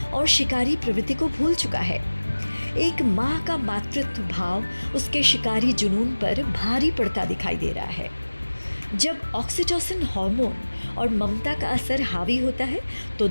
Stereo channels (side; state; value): both; inverted; correlation -1.00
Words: और शिकारी प्रवृत्ति को भूल चुका है। एक माँ का मातृत्व भाव उसके शिकारी जुनून पर भारी पड़ता दिखाई दे रहा है। जब ऑक्सीटोसिन हार्मोन और ममता का असर हावी होता है, तो